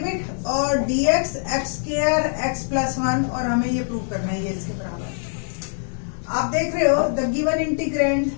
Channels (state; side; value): silent; right; 63 dB below the other